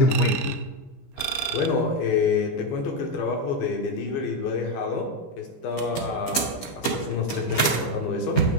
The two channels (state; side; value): late; right; 15 ms